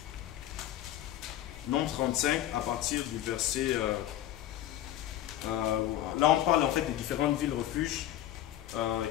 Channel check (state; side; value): quieter; right; 12.9 dB